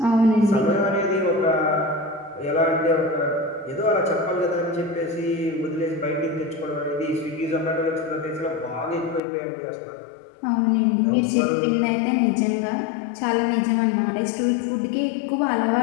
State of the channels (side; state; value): right; drops out; at 9.2 s